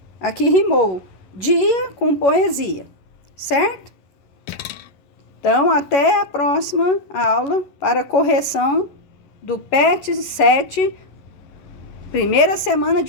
Aqui rimou dia com poesia, certo? Então, até a próxima aula para correção do PET 7, primeira semana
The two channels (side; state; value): right; late; 11 ms